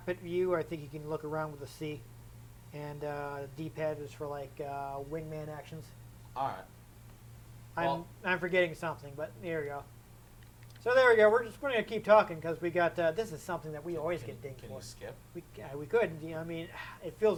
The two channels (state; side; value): identical; both; correlation 1.00